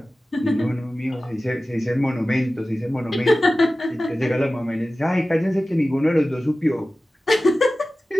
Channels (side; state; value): both; normal; correlation 0.96